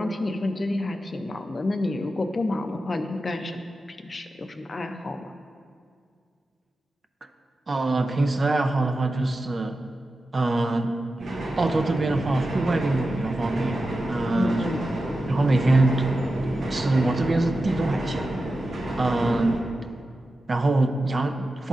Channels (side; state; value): both; normal; correlation 0.92